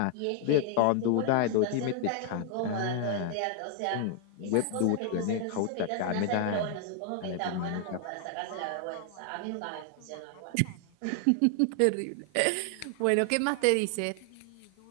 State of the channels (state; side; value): different; both; correlation 0.00